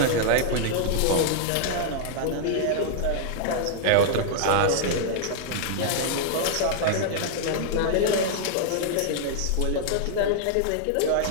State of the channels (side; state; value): both; different; correlation -0.01